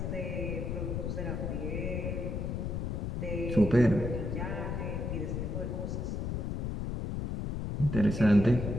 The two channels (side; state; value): left; noise; rumble, 2 dB below the sound